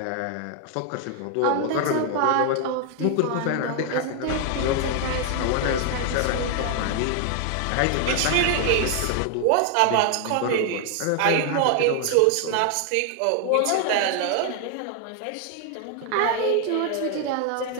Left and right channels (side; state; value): both; different; correlation 0.00